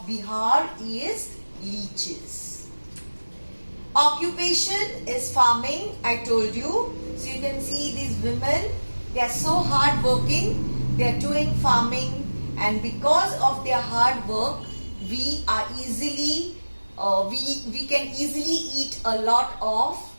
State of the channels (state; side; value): inverted; both; correlation -1.00